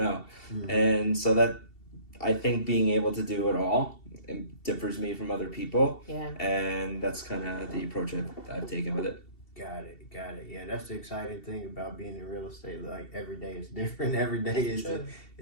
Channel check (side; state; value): right; late; 2.7 ms